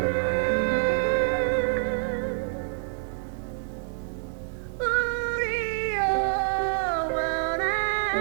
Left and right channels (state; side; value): silent; left; 60 dB below the other